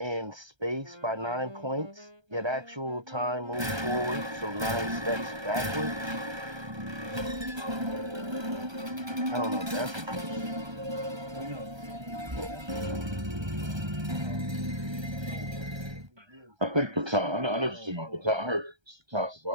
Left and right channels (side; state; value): left; late; 1.3 ms